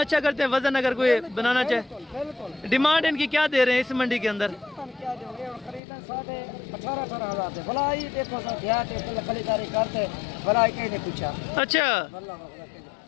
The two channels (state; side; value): drops out; right; at 5.8 s